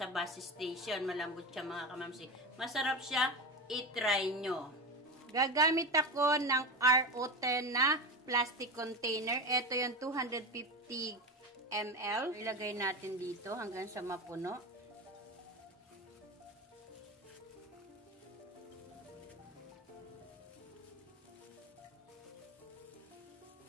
bus station. Malambot siya mga kamamsi. Masarap siya. I-try nyo. Gagamit ako ng RO10 na plastic container. Ito yung 250 ml. Ilagay natin dito hanggang sa mapuno.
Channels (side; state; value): both; normal; correlation 0.22